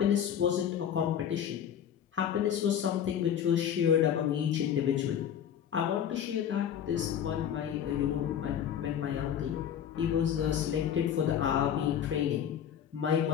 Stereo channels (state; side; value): quieter; right; 9.2 dB